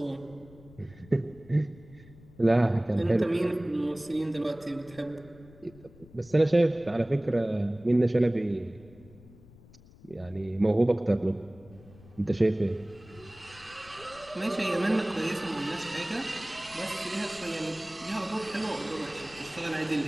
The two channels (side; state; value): left; noise; rumble, 22 dB below the sound